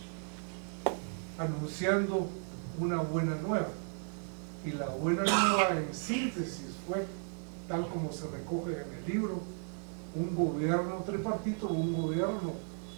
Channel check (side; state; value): left; silent; 55 dB below the other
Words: anunciando una buena nueva. Y la buena nueva en síntesis fue, tal como se recoge en el libro, un gobierno tripartito, un gobierno